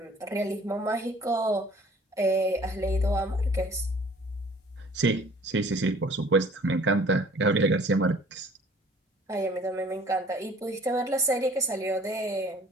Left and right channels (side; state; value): both; normal; correlation 0.52